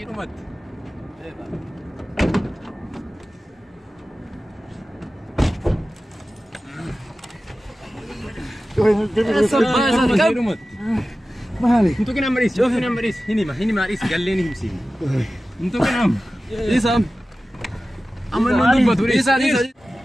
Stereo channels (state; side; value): normal; both; correlation 0.95